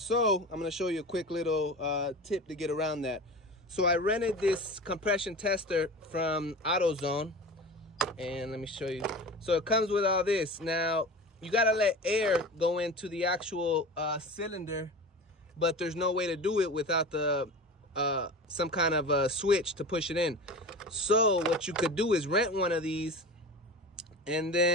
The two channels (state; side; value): normal; both; correlation 0.33